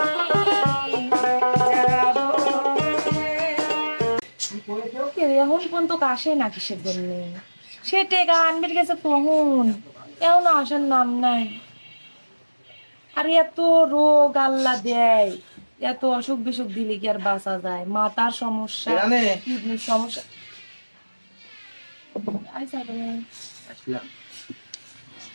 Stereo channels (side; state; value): both; inverted; correlation -1.00